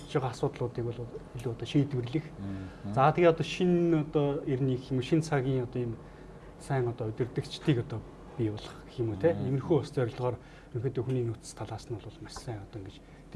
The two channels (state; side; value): identical; both; correlation 1.00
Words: байгаа асуудлуудыг бол илүү одоо шийдвэрлэх. За тэгээ одоо шинэ одоо эрний гэх юм шинэ цагийн одоо ийм сайн одоо удирдагчдыг одоо бий болох гэх юм уу те. Иймэрхүү ус зорилгоор ерөнхийдөө хүний нөөц талаас нь бол маш сайн одоо ингэж